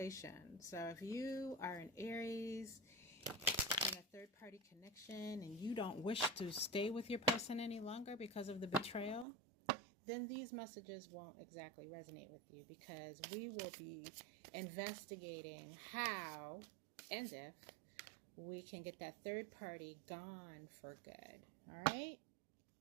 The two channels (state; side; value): drops out; left; at 9.2 s